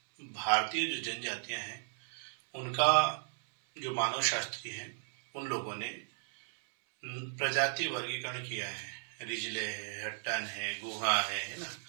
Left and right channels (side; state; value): left; silent; 54 dB below the other